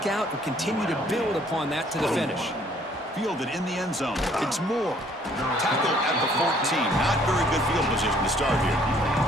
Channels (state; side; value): normal; both; correlation 0.61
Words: out and continue to build upon that to the finish. Fielded in the end zone. It's Moore. Tackled at the 14. Not very good field position to start here.